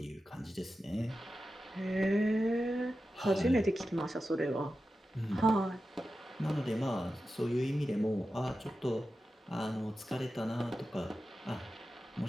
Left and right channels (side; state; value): both; normal; correlation 0.92